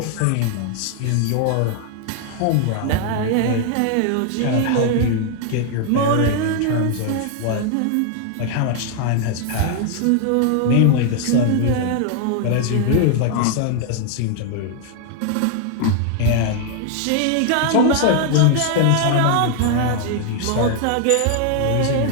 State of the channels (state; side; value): different; both; correlation 0.00